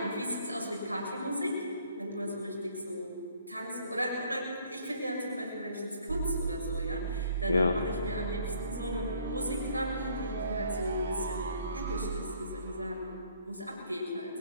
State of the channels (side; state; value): both; inverted; correlation -0.60